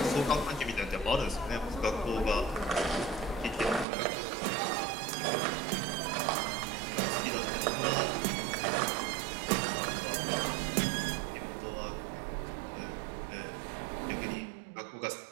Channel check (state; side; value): drops out; left; at 3.9 s